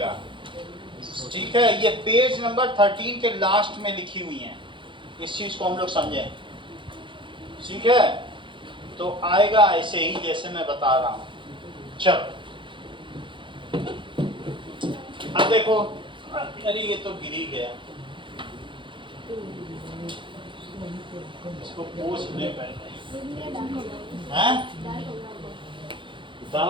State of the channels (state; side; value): late; left; 0.24 ms